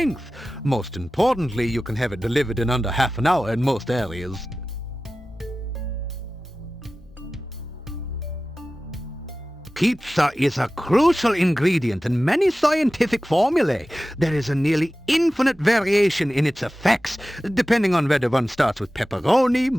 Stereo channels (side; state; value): both; normal; correlation 0.96